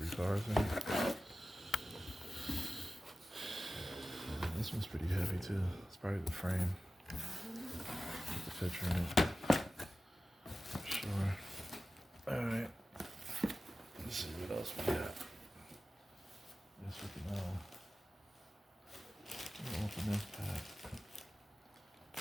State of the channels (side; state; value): both; normal; correlation 0.95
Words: 3 cars in it. This one's pretty heavy too. It's probably the frame. The picture in it. For sure. Alright. Let's see what else we got. Guess we can open this pack.